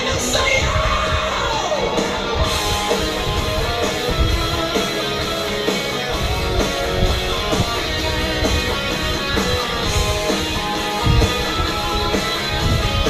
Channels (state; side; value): identical; both; correlation 1.00